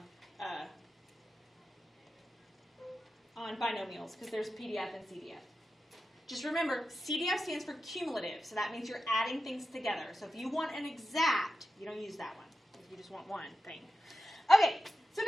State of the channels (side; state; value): both; normal; correlation 0.91